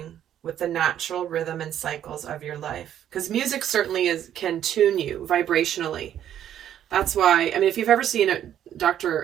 with the natural rhythm and cycles of your life. Because music certainly can tune you vibrationally. That's why, I mean, if you've ever seen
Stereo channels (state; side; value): quieter; left; 10.6 dB